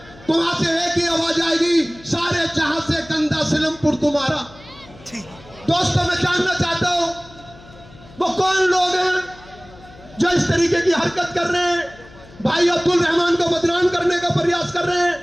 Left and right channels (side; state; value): left; noise; hum, 22 dB below the sound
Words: तो वहां से एक ही आवाज आएगी, सारे जहां से गंदा सिलमपुर तुम्हारा। दोस्तों, मैं जानना चाहता हूं वो कौन लोग हैं जो इस तरीके की हरकत कर रहे हैं, भाई अब्दुल रहमान को बदनाम करने का प्रयास कर रहे हैं।